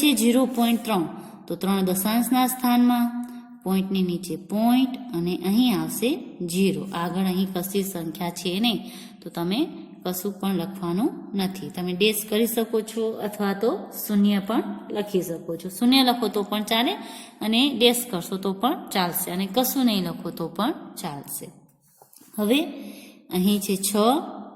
0.3, તો 3 દશાંશના સ્થાનમાં, પોઈન્ટની નીચે પોઈન્ટ અને અહીં આવશે 0. આગળ અહીં કશી સંખ્યા છે નહીં, તો તમે કશું પણ લખવાનું નથી. તમે ડેશ કરી શકો છો અથવા તો શૂન્ય પણ લખી શકો છો. શૂન્ય લખો તો પણ ચાલે અને ડેશ કરશો તો પણ ચાલશે, અને કશું નહીં લખો તો પણ ચાલશે. હવે અહીં છે 6,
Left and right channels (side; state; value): both; identical; correlation 1.00